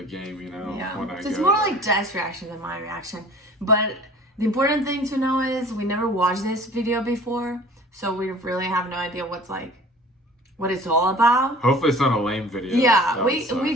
game, you know. Yeah. When I So it's go more there. like Jeff's reaction than my reaction. But the important thing to know is we never watched this video before, so we really have no idea what it's all about. Hopefully it's not a lame video. Yeah, we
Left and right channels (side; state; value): both; normal; correlation 0.46